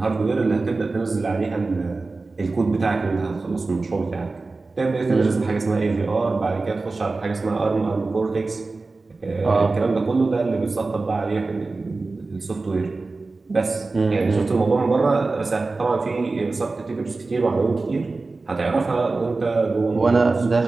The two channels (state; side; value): quieter; left; 3.6 dB